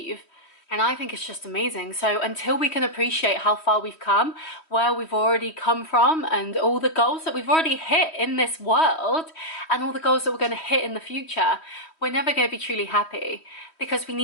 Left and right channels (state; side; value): late; right; 3.1 ms